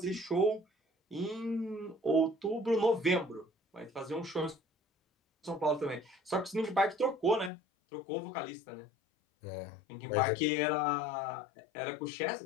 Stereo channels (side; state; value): right; drops out; at 7.5 s